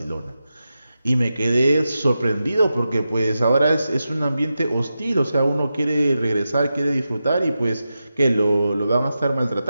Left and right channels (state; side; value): inverted; both; correlation -0.91